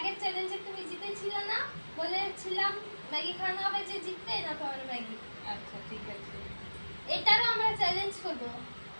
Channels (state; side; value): inverted; both; correlation -1.00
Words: চ্যালেঞ্জে তুমি জিতেছিলে না, বলেছিলাম ম্যাগি খাওয়ানো হবে যে জিতবে না তোমার ম্যাগি। আচ্ছা ঠিক আছে। এটারও আমরা চ্যালেঞ্জ করব।